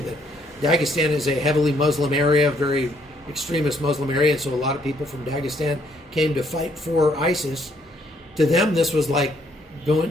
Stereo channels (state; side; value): normal; both; correlation 0.68